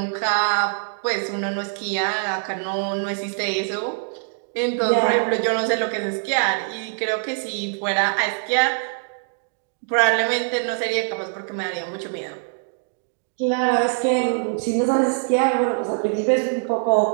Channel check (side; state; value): left; silent; digital silence